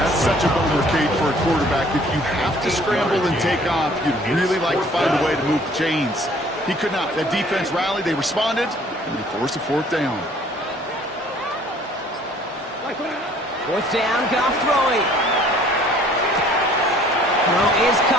such a bummer, Kate, for a quarterback. If you have to scramble and take off, you'd really like to find a way to move the chains. He could not. That defense rallied, they responded, and they forced a 4th down. 4th down, Goff throwing. Throw is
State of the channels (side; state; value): both; normal; correlation 0.56